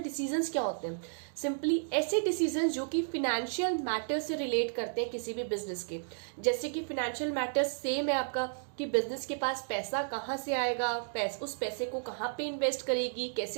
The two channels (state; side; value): silent; left; digital silence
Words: डिसीजंस क्या होते हैं? सिंपली ऐसे डिसीजंस जो कि फिनेंशियल मैटर्स से रिलेट करते हैं किसी भी बिजनेस के. जैसे कि फिनेंशियल मैटर्स सेम है आपका कि बिजनेस के पास पैसा कहाँ से आएगा, उस पैसे को कहाँ पे इन्वेस्ट करेगी,